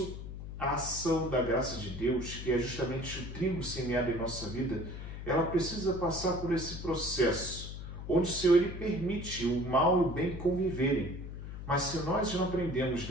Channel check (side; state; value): left; noise; hum, 9 dB below the sound